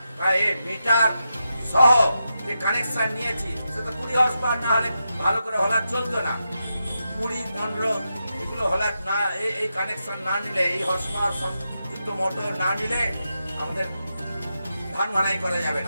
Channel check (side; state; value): both; inverted; correlation -0.87